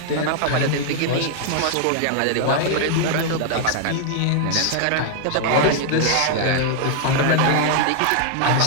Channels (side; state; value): both; different; correlation 0.00